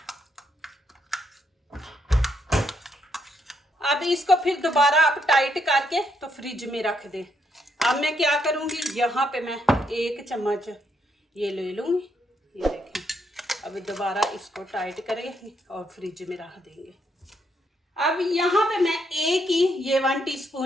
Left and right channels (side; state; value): both; normal; correlation 0.76